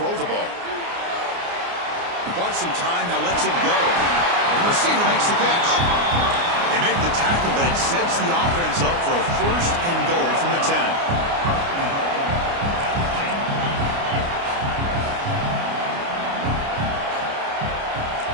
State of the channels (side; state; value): left; late; 29 ms